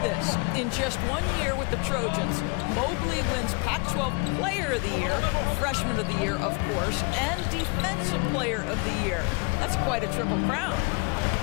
this? In just 1 year with the Trojans, Mobley wins Pac-12 Player of the Year, Freshman of the Year, of course, and Defensive Player of the Year. That's quite a triple crown.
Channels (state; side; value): quieter; right; 32.2 dB